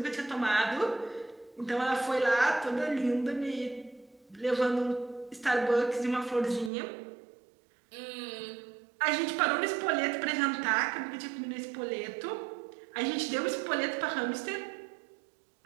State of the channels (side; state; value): left; drops out; at 6.7 s